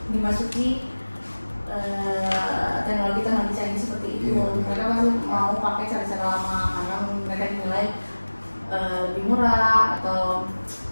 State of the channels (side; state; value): both; inverted; correlation -1.00